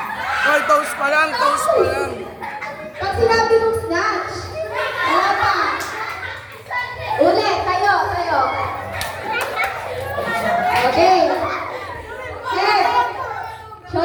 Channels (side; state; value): both; identical; correlation 1.00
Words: Hoy, toes pa lang, toes pa lang. Pag sinabi mong snatch, wala pa. Ulit, tayo, tayo. Okay. Head,